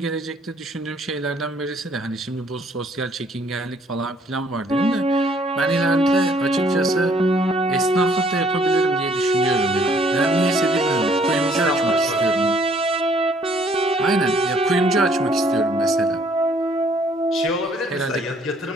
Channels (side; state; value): both; normal; correlation 0.63